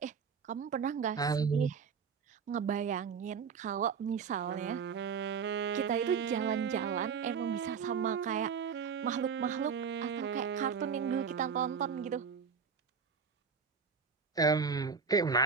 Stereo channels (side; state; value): left; quieter; 6.1 dB